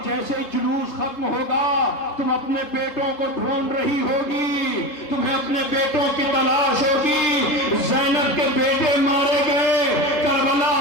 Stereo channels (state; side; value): late; right; 3.3 ms